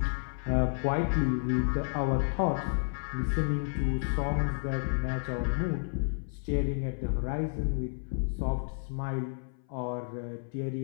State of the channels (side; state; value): right; silent; 57 dB below the other